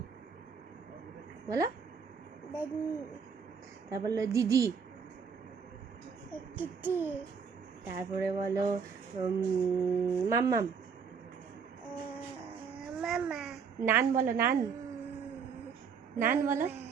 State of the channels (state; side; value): quieter; left; 6.2 dB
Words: বলো। দাদু, তারপর বলো দিদি, দিদি, তারপরে বলো মাম্মাম। মামা, নান বলো, নান, নান বলো,